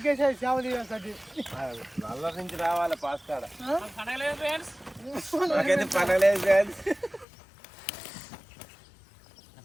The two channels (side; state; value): right; drops out; at 7.2 s